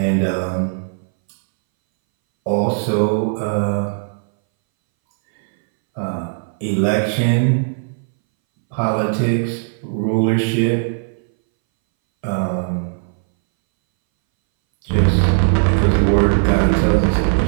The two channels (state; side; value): silent; left; 64 dB below the other